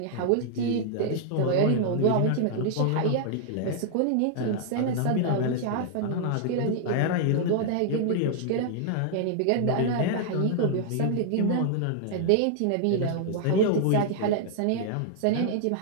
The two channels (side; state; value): both; different; correlation -0.01